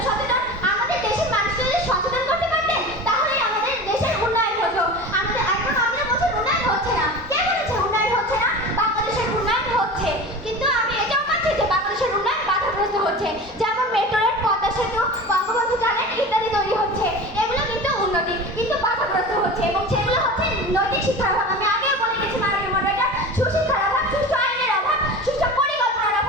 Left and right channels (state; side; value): normal; both; correlation 0.33